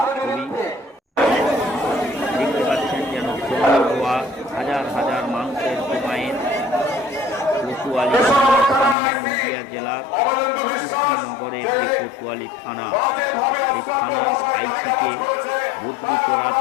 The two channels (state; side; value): drops out; right; at 9.0 s